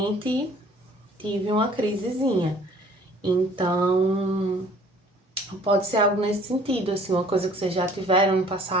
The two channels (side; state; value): both; normal; correlation 0.54